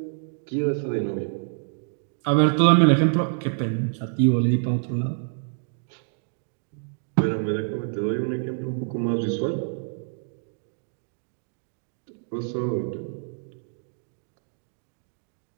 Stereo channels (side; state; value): left; silent; digital silence